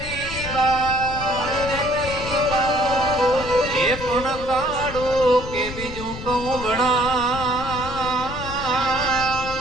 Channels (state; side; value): noise; left; rumble, 10 dB below the sound